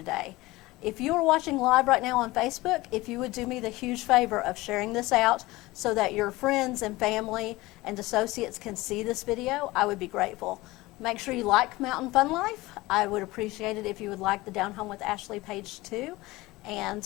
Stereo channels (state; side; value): quieter; right; 20.0 dB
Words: If you are watching live right now on Facebook, if you would do me the huge favor of sharing this out so that your friends and family and associates can see this video, I would be grateful. Make sure you like Mountain Fun Life. I would appreciate it if you would like the Down Home with Ashley page too. And